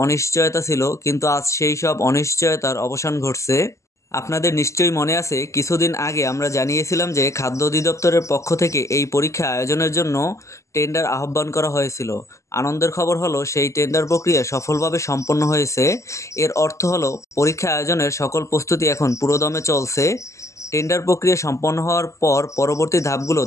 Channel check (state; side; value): late; right; 0.14 ms